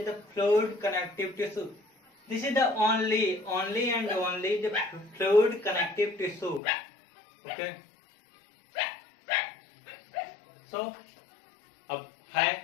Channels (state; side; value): drops out; right; at 6.6 s